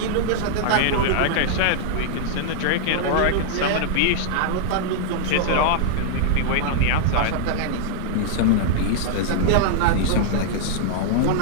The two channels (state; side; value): different; both; correlation -0.01